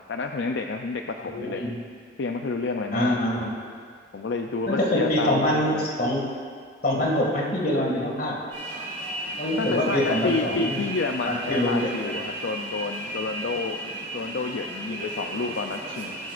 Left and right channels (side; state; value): both; normal; correlation 0.28